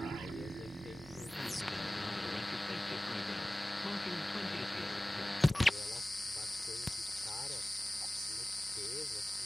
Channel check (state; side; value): normal; both; correlation 0.98